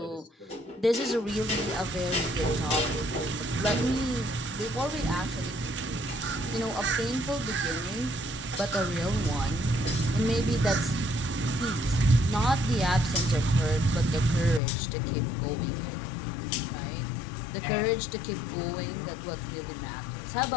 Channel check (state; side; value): drops out; right; at 14.6 s